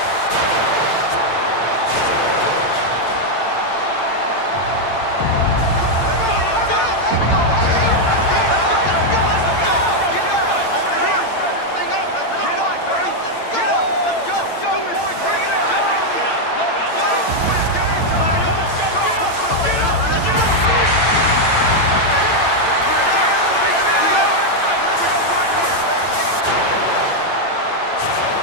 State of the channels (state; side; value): late; right; 8.9 ms